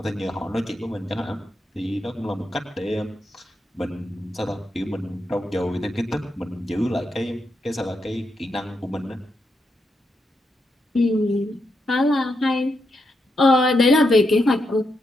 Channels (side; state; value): both; normal; correlation 0.83